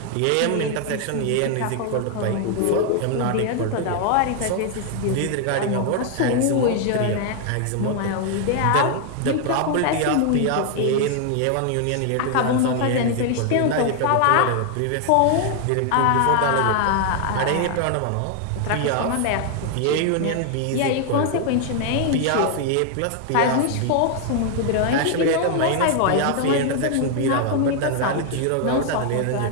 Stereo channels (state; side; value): different; both; correlation 0.00